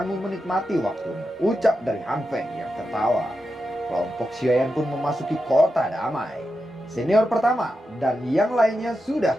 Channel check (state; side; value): normal; both; correlation 0.89